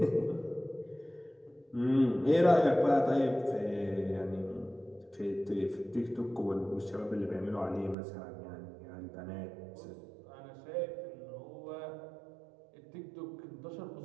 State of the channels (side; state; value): left; drops out; at 8.0 s